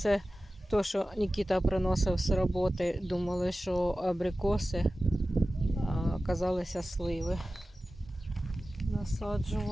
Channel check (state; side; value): normal; both; correlation 0.95